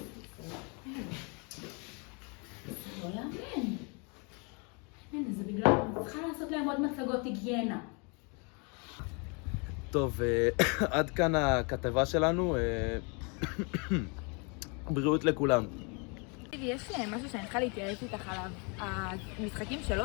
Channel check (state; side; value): quieter; right; 33.5 dB